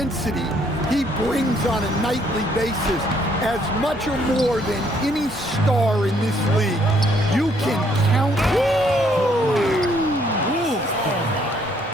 he brings on a nightly basis, as much or more than any star in this league. You can count.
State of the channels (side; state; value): both; normal; correlation 0.67